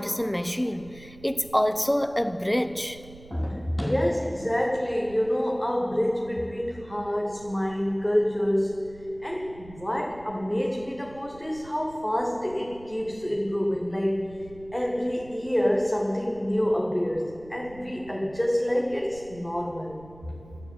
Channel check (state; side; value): noise; right; rumble, 20 dB below the sound